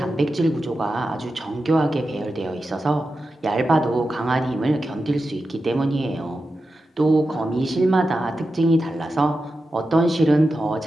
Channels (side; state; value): both; normal; correlation 0.91